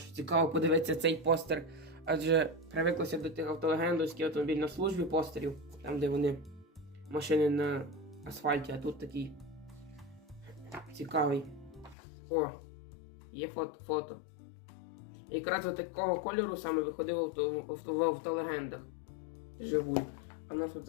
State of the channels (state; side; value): drops out; right; at 12.0 s